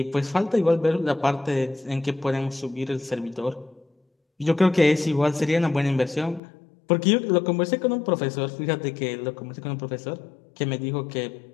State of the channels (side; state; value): right; drops out; at 6.4 s